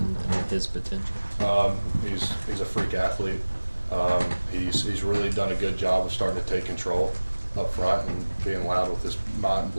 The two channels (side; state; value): both; inverted; correlation -1.00